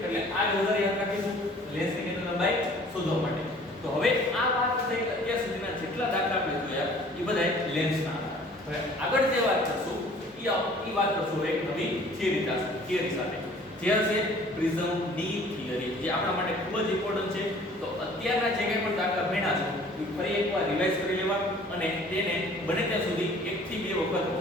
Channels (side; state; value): both; normal; correlation 0.52